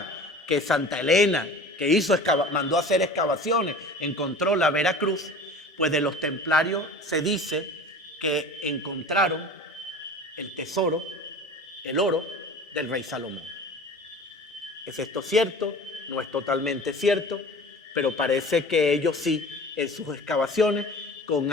que Santa Elena, que mandó a hacer excavaciones, encontró la Veracruz, pues de los templarios se dice que encontraron el tesoro, el oro del rey Salomón. ¿Es esto cierto? No es totalmente cierto, pero parece que ellos sí, en sus excavaciones, con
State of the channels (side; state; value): both; normal; correlation 0.39